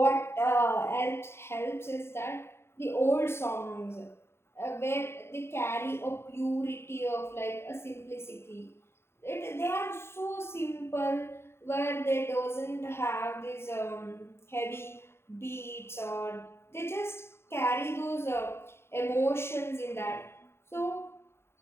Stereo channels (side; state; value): right; late; 0.12 ms